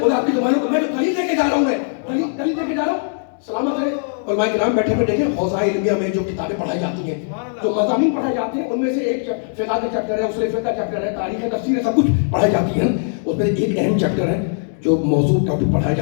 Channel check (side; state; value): right; silent; digital silence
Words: خدا آپ کی زبانوں کو, میں جو دلیل لے کے جا رہا ہوں, میں دلیل لے کے جا رہا ہوں. سلامت رہے علماء کرام بیٹھے ہوئے دیکھیں, حوزہ علمیہ میں جو کتابیں پڑھائی جاتی ہیں, جو مضامین پڑھائے جاتے ہیں, ان میں سے ایک فقہ کا چیپٹر ہے, اصول فقہ کا چیپٹر ہے, تاریخ ہے, تفسیر ہے, سب کچھ پڑھائی جاتی ہے. اس میں ایک اہم چیپٹر ہے جو موضوع ٹاپک پڑھایا